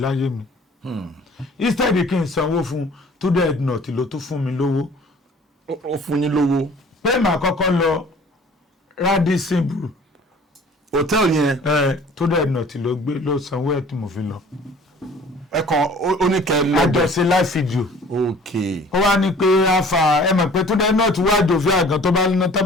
mi instead kí n sanwó fún Túndé Ednut ló tún fún mi lówó. ó fún yín lówó. pé màá kọ́kọ́ lọ Radisson Blu hòtẹ́ẹ̀lì yẹn. Túndé Ednut ló gbé ló sanwó ẹ̀ tí mo fi lọ. ẹ kàn ó ní kẹ́ lọ. àjọṣe live video. ok. ó wá ní pé afa ẹ mọ̀ pé Túndé Ednut wá jòfin àgàn tó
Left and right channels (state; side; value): normal; both; correlation 0.50